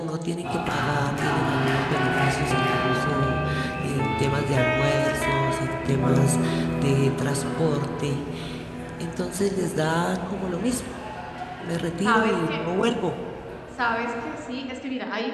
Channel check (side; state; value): both; identical; correlation 1.00